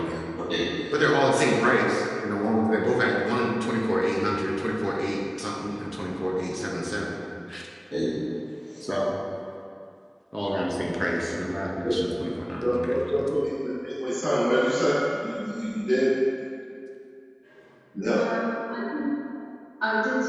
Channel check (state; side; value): identical; both; correlation 1.00